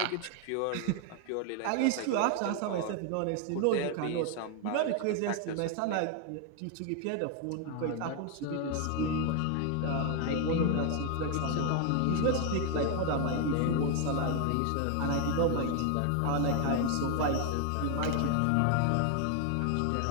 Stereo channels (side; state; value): both; different; correlation 0.01